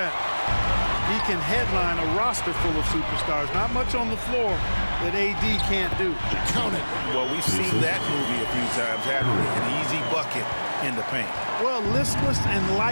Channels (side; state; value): both; inverted; correlation -1.00